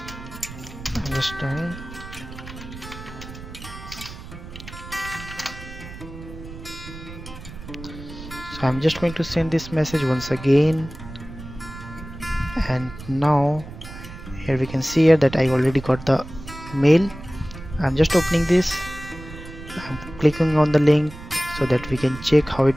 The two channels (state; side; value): noise; right; rumble, 14 dB below the sound